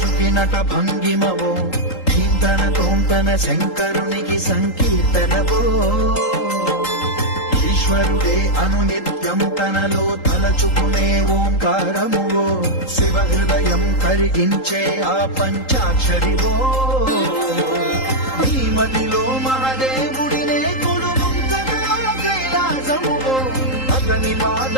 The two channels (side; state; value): right; late; 3.8 ms